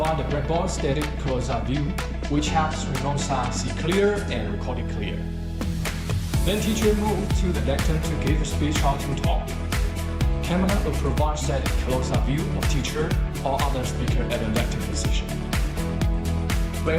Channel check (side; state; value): both; identical; correlation 1.00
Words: the blackboard static close-up view, which helps remote side see clear and record it clear. Then teacher move to the lectern to give a speech or to talk. Camera will provide static close-up view of teacher or other speaker at the lectern position.